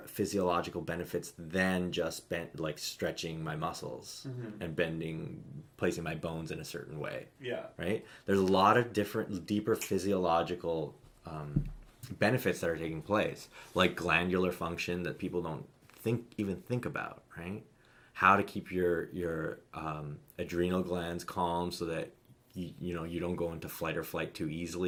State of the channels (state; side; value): identical; both; correlation 1.00